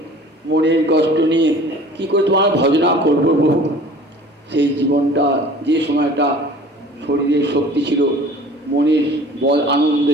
মনের কষ্ট নিয়ে কি করে তোমার ভজনা করবো প্রভু? সেই জীবনটা, যে সময়টা শরীরের শক্তি ছিল, মনের বল আনন্দ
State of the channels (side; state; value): both; normal; correlation 0.46